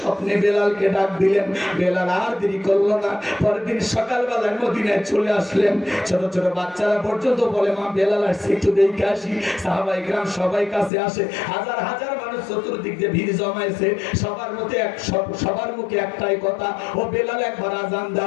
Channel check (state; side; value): drops out; right; at 10.9 s